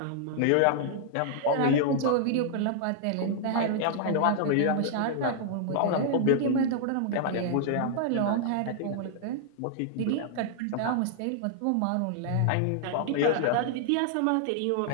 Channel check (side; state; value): both; different; correlation -0.01